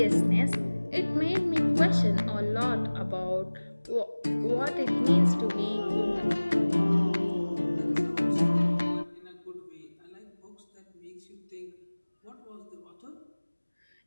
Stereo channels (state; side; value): inverted; both; correlation -1.00